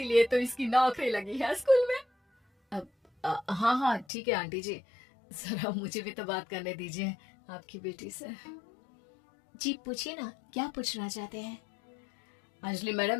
तो इसकी नौकरी लगी है स्कूल में। हाँ हाँ ठीक है आंटी जी, जरा मुझे भी तो बात करने दीजिए आपकी बेटी से। जी पूछिए ना, क्या पूछना चाहते हैं? अंजलि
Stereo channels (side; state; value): right; drops out; at 4.0 s